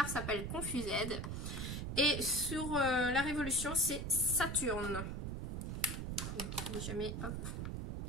s'appelle Confused et sur la Révolution c'est Saturne. Donc jamais, hop.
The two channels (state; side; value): noise; right; rumble, 4 dB below the sound